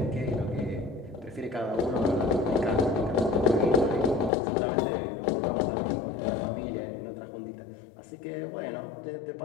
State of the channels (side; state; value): right; drops out; at 4.3 s